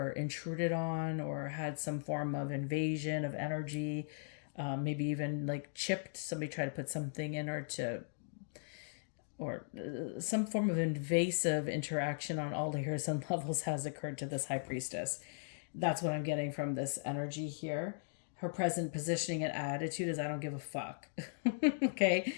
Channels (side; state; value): right; silent; digital silence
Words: intruded on or had some form of invasion of energy, maybe even like chipped. Somebody tried to put something in her or some form of invasive interaction on all layers and levels has occurred to this High Priestess. That's what I'm getting from this energy here. Her present positioning and attitude is, I don't give a fuck. Okay?